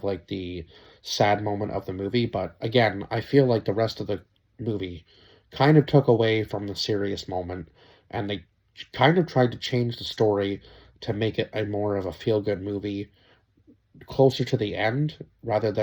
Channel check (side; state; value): both; identical; correlation 1.00